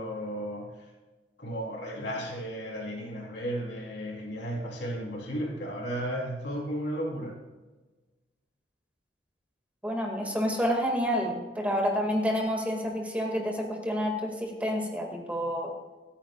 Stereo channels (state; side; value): normal; both; correlation 0.58